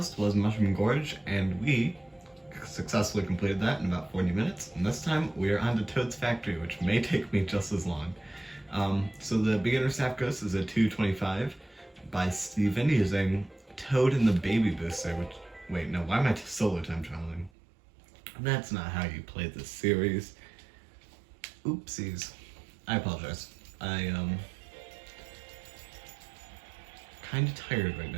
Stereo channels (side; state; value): left; drops out; at 17.5 s